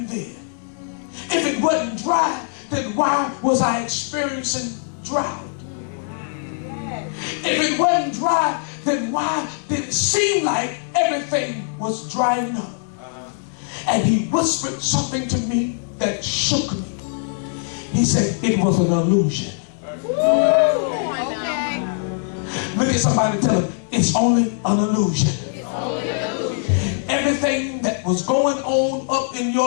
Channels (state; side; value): silent; right; 65 dB below the other